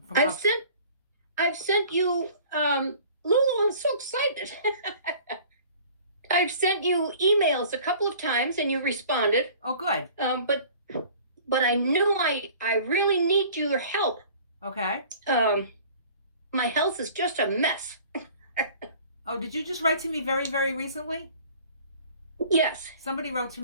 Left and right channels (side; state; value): both; inverted; correlation -0.48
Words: I've sent you, Lulu, I'm so excited. I've sent you emails a couple of times and you responded. Oh, good. But I knew I really need your help. Okay. My health is just a mess. Oh, did you just write to me very, very recently? Yes. Somebody wrote to